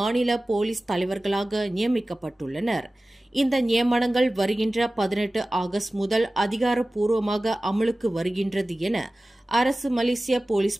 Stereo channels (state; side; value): normal; both; correlation 0.97